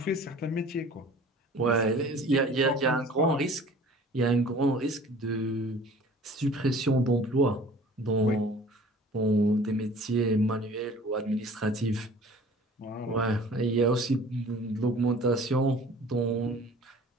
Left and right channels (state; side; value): normal; both; correlation 0.47